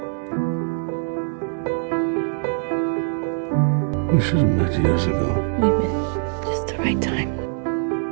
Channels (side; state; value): left; silent; 59 dB below the other